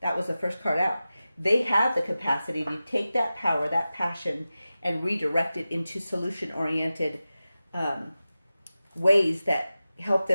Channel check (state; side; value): inverted; both; correlation -0.95